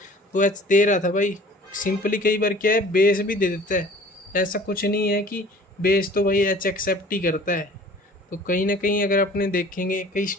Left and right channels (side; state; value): both; normal; correlation 0.48